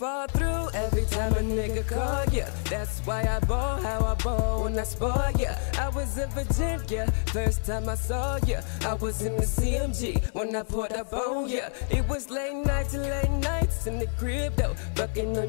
through every time a nigga call, yeah. That's why I ball how I ball when I spar, yeah. I was in Virginia, first time I saw ya. I was in the CMG when I pulled up on ya. It was late nights in the crib though. Fucking know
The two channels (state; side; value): silent; right; 60 dB below the other